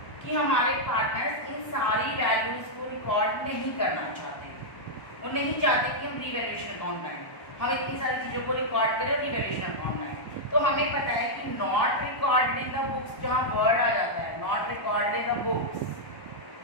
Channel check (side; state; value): right; late; 1.1 ms